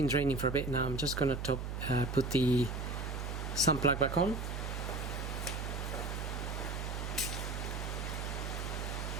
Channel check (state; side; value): noise; right; hum, 4 dB below the sound